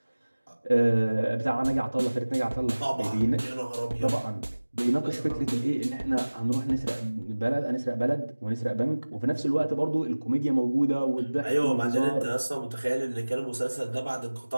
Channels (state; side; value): inverted; both; correlation -1.00